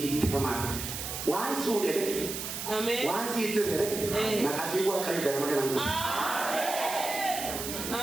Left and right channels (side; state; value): right; noise; hiss, 6 dB below the sound